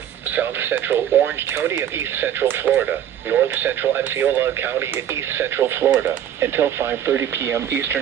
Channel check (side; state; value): left; quieter; 10.2 dB